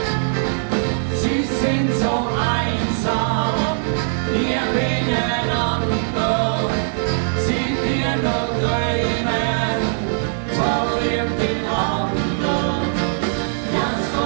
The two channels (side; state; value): left; silent; digital silence